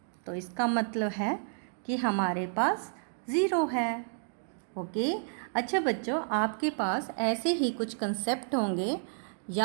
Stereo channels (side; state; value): left; silent; digital silence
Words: तो इसका मतलब है कि हमारे पास 0 है। ओके, अच्छा बच्चों, आपके पास ऐसे ही कुछ कंसेप्ट होंगे